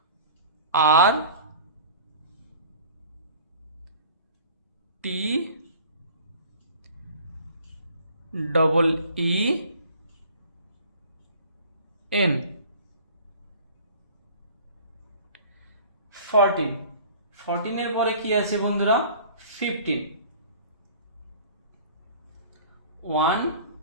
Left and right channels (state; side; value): inverted; both; correlation -0.46